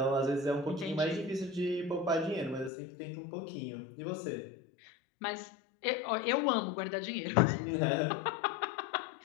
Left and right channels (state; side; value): drops out; right; at 2.7 s